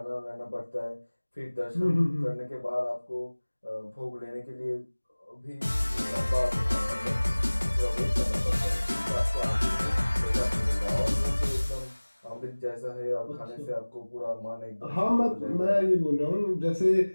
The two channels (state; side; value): inverted; both; correlation -1.00